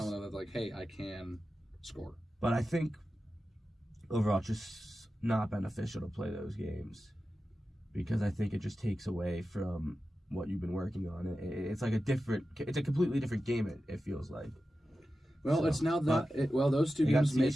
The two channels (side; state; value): both; normal; correlation 0.93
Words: of them that, like, hey, I can score. But I think overall it's just not beneficial to play those games because I think it just takes away from what you've been working on. It's like it's a completely different game, it feels like. Well, it's now those two games